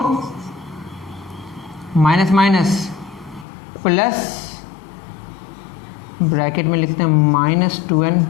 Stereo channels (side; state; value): right; drops out; at 3.5 s